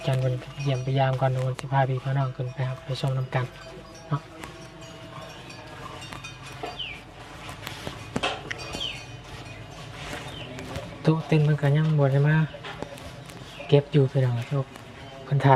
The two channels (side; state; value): both; identical; correlation 1.00